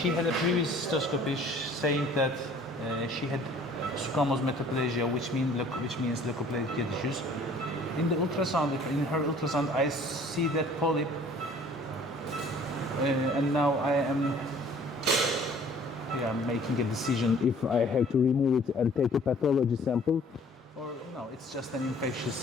had a previous cystoscopy saying that she had squamous metaplasia, which means leukoplakia tissues. In the ultrasound, in her ultrasound, I see that polyp, and now I am making a decision if I have to remove it and take a pathology sample, or no, it's just an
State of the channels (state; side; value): normal; both; correlation 0.53